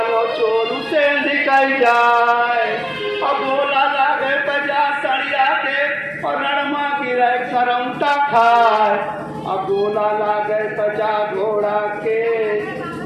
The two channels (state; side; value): identical; both; correlation 1.00